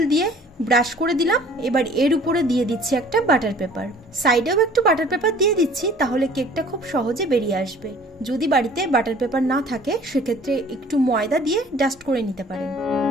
দিয়ে ব্রাশ করে দিলাম। এবার এর উপরে দিয়ে দিচ্ছি একটা বাটার পেপার, সাইডেও একটু বাটার পেপার দিয়ে দিচ্ছি, তাহলে কেকটা খুব সহজে বেরিয়ে আসবে। যদি বাড়িতে বাটার পেপার না থাকে সেক্ষেত্রে একটু ময়দা দিয়ে ডাস্ট করে নিতে পারেন।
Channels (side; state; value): both; normal; correlation 0.51